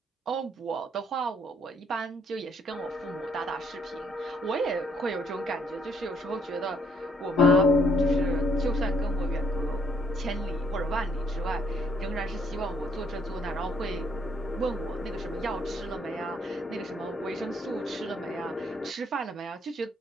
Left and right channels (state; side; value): normal; both; correlation 0.67